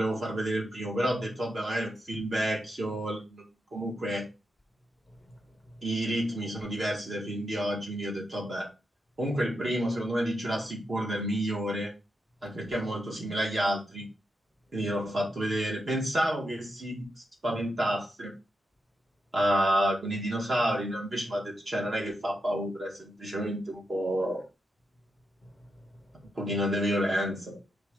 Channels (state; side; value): normal; both; correlation 0.85